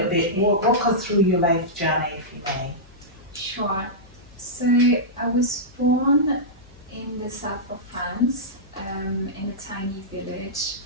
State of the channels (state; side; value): noise; left; hum, 24 dB below the sound